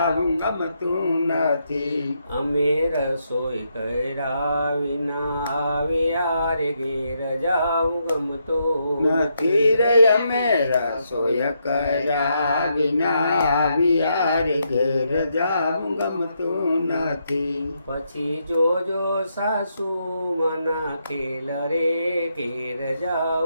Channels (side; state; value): both; inverted; correlation -0.79